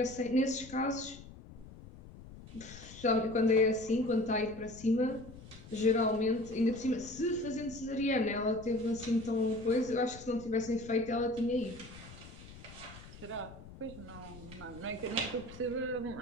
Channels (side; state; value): left; noise; rumble, 17 dB below the sound